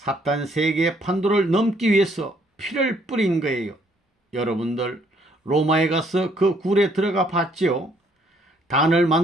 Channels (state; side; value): normal; both; correlation 0.66